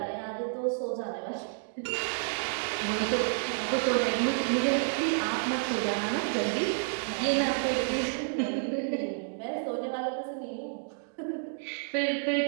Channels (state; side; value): silent; left; digital silence